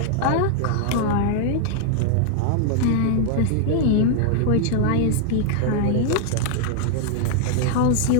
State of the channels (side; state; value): both; different; correlation -0.01